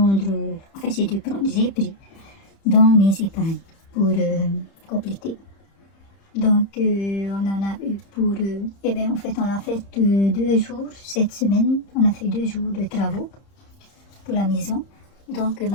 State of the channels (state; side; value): late; right; 30 ms